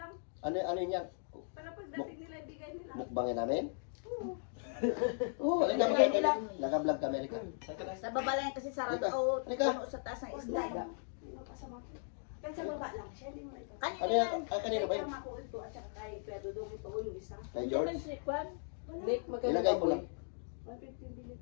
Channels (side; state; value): right; silent; digital silence